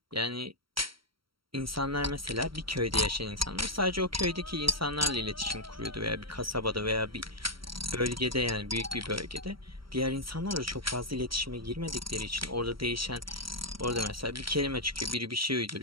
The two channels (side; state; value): left; late; 0.74 ms